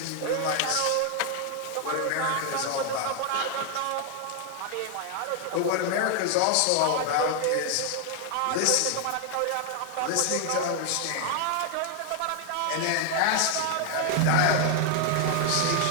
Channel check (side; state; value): both; different; correlation 0.00